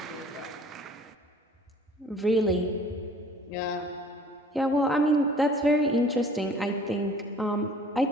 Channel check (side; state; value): both; normal; correlation 0.51